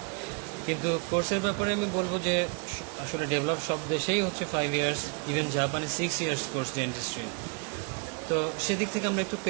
কিন্তু কোর্সের ব্যাপারে আমি বলবো যে আসলে ডেভেলপ সব দেশেই হচ্ছে 5 ইয়ার্স, ইভেন জাপানে 6 ইয়ার্স কোর্স ডেন্টিস্ট্রি। তো সেদিক থেকে আমরা একটু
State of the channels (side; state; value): left; quieter; 35.0 dB